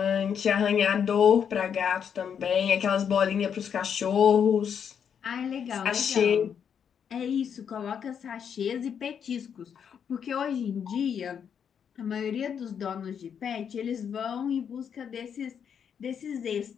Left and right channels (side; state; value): right; quieter; 7.7 dB